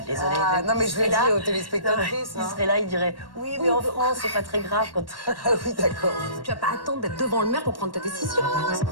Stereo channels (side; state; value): right; late; 1.1 ms